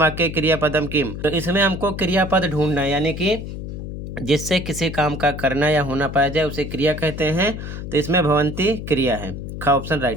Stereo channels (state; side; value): noise; left; hum, 8 dB below the sound